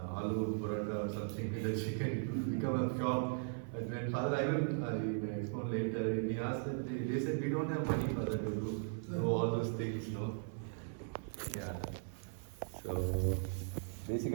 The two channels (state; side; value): silent; left; 52 dB below the other